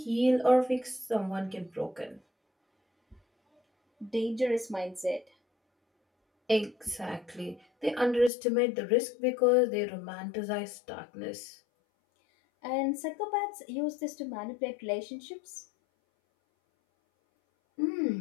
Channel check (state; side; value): drops out; right; at 8.3 s